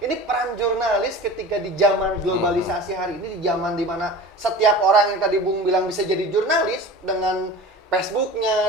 ini peran jurnalis ketika di zaman globalisasi hari ini, di zaman dimana setiap orang yang tadi Bung bilang bisa jadi jurnalis dengan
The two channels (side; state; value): both; normal; correlation 0.36